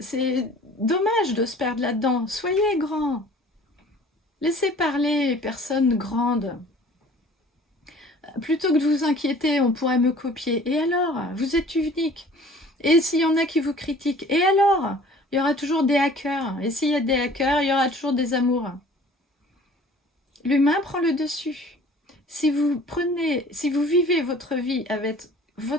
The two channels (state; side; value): normal; both; correlation 0.49